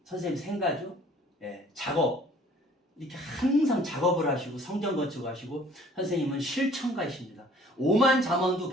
선생님 생가죠. 작업. 이렇게 항상 작업을 하시고 성전 건축하시고 선생님은 실천가이십니다. 오만 잠언도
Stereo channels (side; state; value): both; normal; correlation 0.54